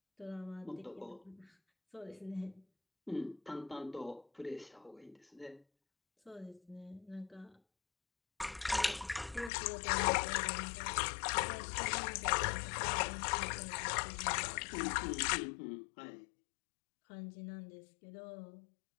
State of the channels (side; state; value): right; drops out; at 9.5 s